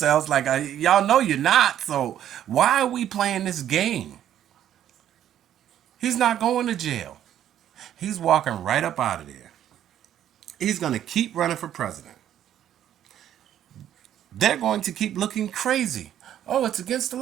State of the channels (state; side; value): quieter; left; 10.9 dB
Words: Like, y'all know you're not, so why are we playing this game? He's not going to jail. He's walking right up out of there. He's gonna keep running for president. They're going to keep looking crazy. Oh, it's against the